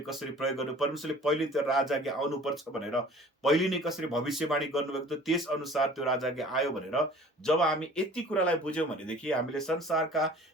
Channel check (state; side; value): normal; both; correlation 0.48